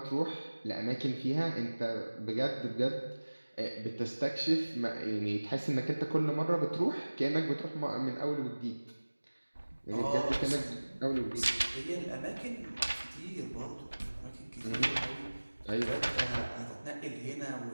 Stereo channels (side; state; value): both; inverted; correlation -1.00